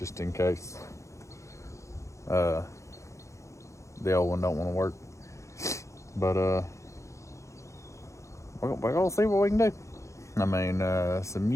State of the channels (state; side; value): late; right; 0.15 ms